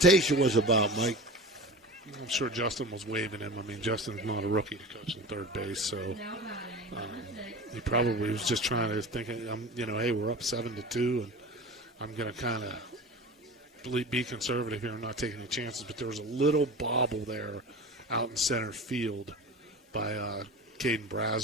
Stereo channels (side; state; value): both; normal; correlation 0.33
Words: was about, Mike. I'm sure Justin was waving him. I mean, Justin's not a rookie to coach in third base, so he probably was just trying to think, hey, we're up 7-2, and I'm going to kind of be conservative here and not take any chances. But there was a little bobble there out in center field by Caden